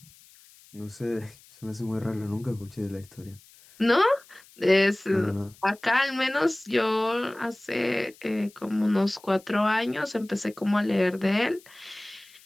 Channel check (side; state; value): left; noise; hiss, 25 dB below the sound